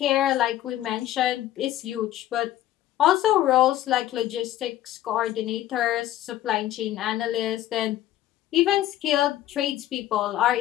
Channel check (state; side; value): quieter; right; 13.4 dB